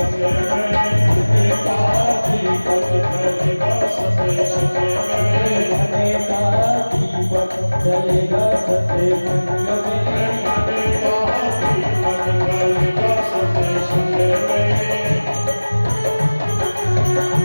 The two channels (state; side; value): inverted; both; correlation -1.00